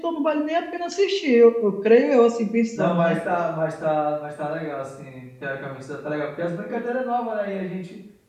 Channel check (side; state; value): both; identical; correlation 1.00